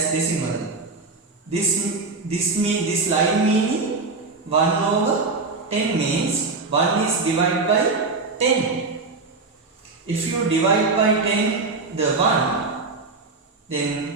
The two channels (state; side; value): quieter; left; 3.9 dB